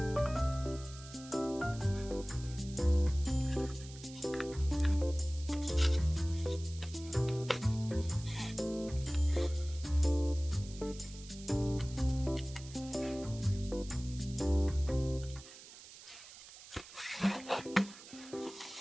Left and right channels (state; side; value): noise; right; hiss, 17 dB below the sound